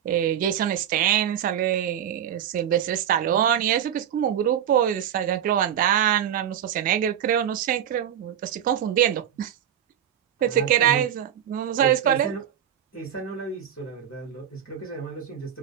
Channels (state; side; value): quieter; left; 9.9 dB